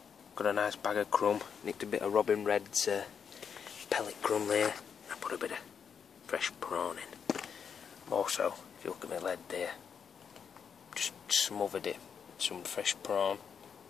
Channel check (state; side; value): quieter; right; 7.0 dB